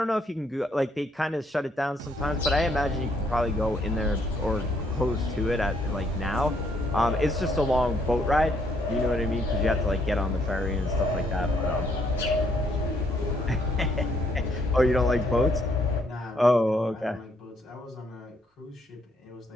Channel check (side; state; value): both; normal; correlation 0.70